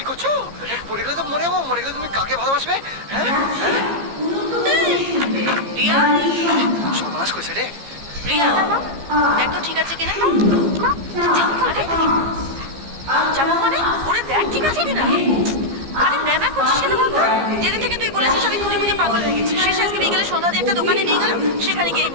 করছো? পড়ে গেলে তো মরে যাবো। মরে গেলে তুমি কাকে ভালোবাসবে? হ্যাঁ হ্যাঁ রিয়া, সর্বনাশ করেছে রে। রিয়া দেখ তো ঠিক আছে কিনা। যাবো মানে ওরে দেখ ঠিক আছে কিনা। আরে ম্যামা করছিস কেন বলতো? যেদিন থেকে তুই বলেছিস আমি খুঁজে খুঁজে পাগল হয়ে গেছি। শেষে আজকে বিকেলে সন্ধ্যা দিয়ে একটা দোকানে নিয়ে গেল, সেখানে গিয়ে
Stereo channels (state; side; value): late; left; 15 ms